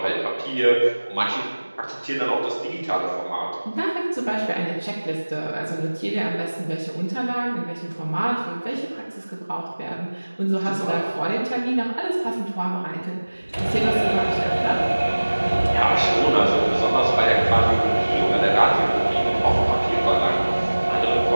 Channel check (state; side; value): inverted; both; correlation -1.00